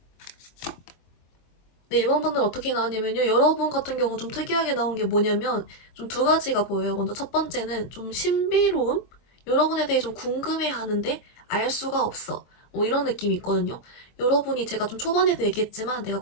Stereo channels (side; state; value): right; late; 23 ms